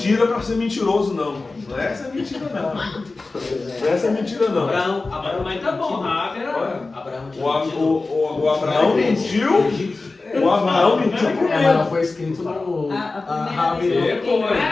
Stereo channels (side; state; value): right; quieter; 3.6 dB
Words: para ser mentiroso, não. Não é essa mentira, não. Não é essa mentira, não. Abraão, mas tá bom, O Abraão mentiu. O Abraão mentiu por Mas medo. foi escrito no. Não é